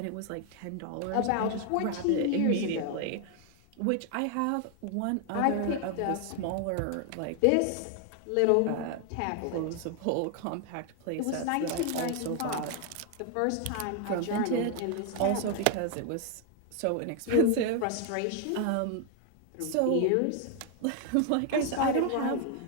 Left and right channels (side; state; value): both; different; correlation 0.00